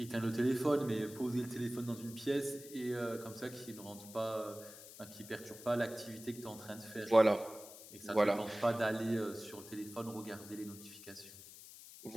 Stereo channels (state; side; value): noise; left; hiss, 16 dB below the sound